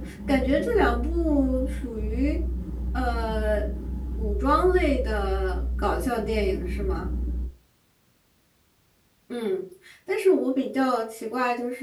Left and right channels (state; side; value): identical; both; correlation 1.00